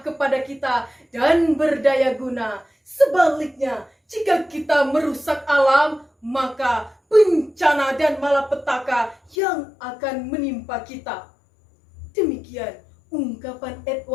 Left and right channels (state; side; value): drops out; right; at 9.3 s